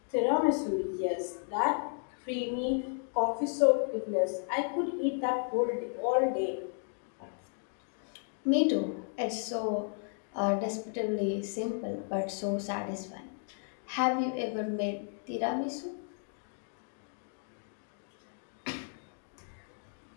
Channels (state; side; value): silent; right; 55 dB below the other